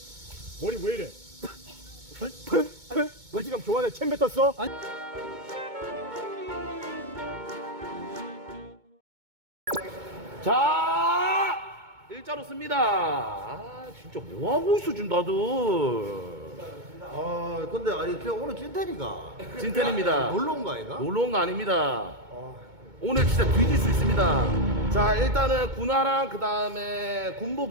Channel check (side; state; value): left; late; 2.2 ms